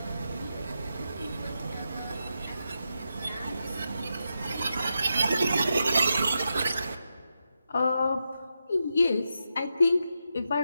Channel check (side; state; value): both; inverted; correlation -0.86